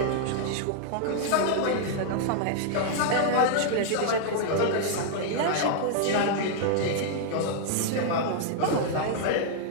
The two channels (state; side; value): different; both; correlation -0.01